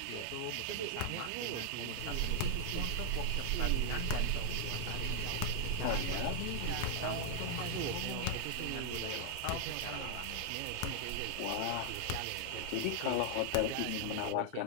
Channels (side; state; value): both; different; correlation 0.00